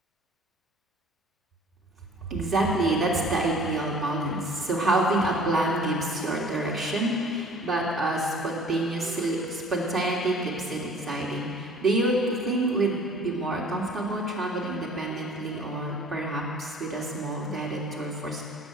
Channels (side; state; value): both; normal; correlation 0.49